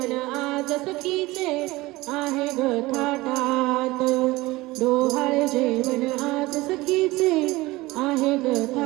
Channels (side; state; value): left; quieter; 20.2 dB